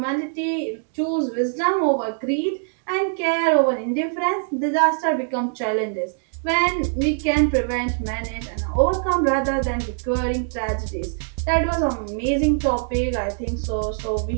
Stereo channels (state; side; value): silent; left; digital silence